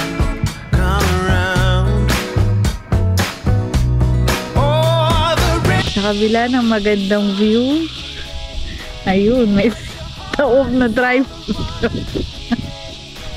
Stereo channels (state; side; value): identical; both; correlation 1.00